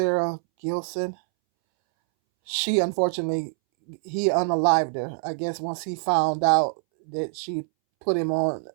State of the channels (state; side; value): silent; left; 62 dB below the other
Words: Gilson. She unfortunately he unalived her. I guess once he found out that she put him on